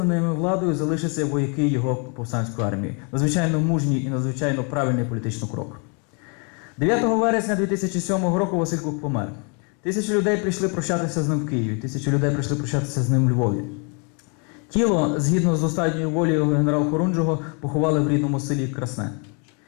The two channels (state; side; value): quieter; right; 36.5 dB